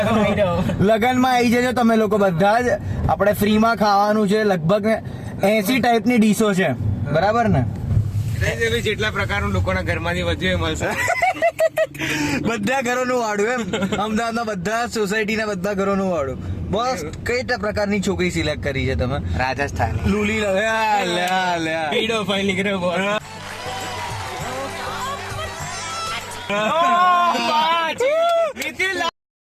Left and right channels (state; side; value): identical; both; correlation 1.00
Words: લગનમાં આવી જજો તમે લોકો બધા જ. આપણે ફ્રીમાં ખાવાનું છે, લગભગ 80 ટાઈપની ડીશો છે, બરાબર ને? જેટલા પ્રકારનું લોકોના ઘરમાંથી વધ્યું એ મળશે. બધા ઘરોનું વાળું એમ, અમદાવાદના બધા સોસાયટીના બધા ઘરોનું વાળું. બસ કઈ પ્રકારની છોકરી સિલેક્ટ કરી છે તમે? રાજસ્થાન લુલી પીડો ફાઇલ નીકળ્યો બોલ.